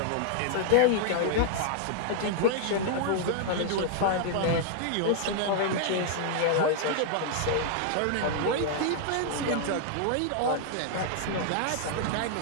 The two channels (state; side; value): different; both; correlation 0.00